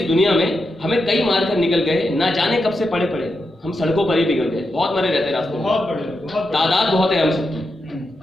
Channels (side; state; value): both; normal; correlation 0.86